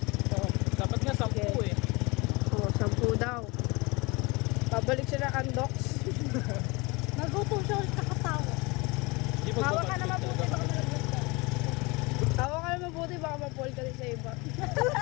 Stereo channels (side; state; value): right; quieter; 25.8 dB